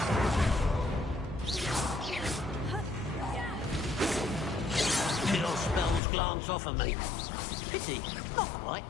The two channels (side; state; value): right; drops out; at 6.0 s